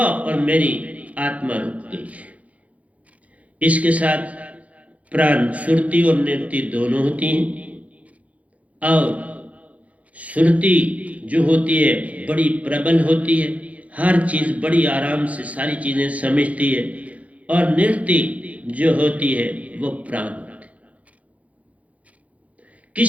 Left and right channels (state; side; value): late; left; 0.067 ms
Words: और मेरी आत्मा रुक गई। इसके साथ प्राण सुरति और निरति दोनों होती हैं, और सुरति जो होती है बड़ी प्रबल होती है, हर चीज बड़ी आराम से सारी चीजें समझती है, और निरति जो होती है वो प्राण होती है।